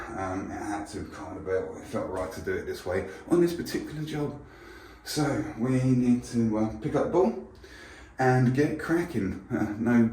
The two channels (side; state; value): both; identical; correlation 1.00